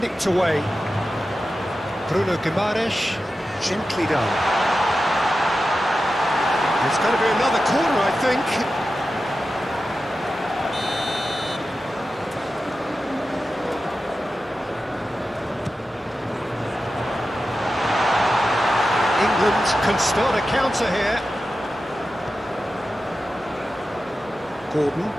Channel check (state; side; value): normal; both; correlation 0.92